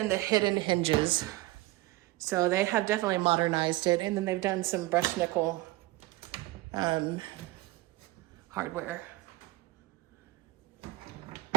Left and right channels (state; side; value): quieter; left; 19.4 dB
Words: the hidden hinges. So they have definitely modernized it. And then they've done some brushed nickel hardware.